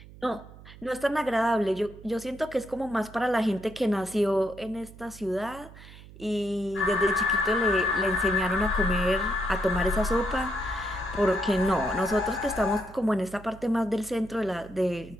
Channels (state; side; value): noise; right; hum, 19 dB below the sound